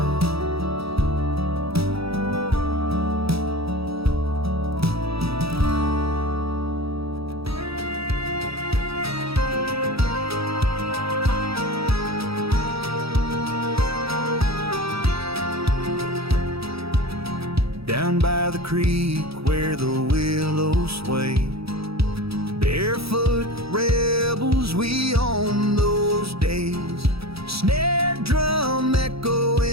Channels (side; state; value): left; late; 0.77 ms